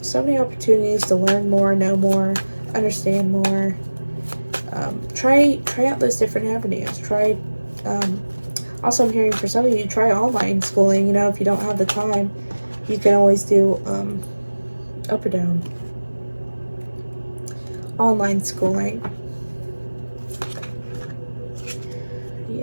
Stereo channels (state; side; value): inverted; both; correlation -1.00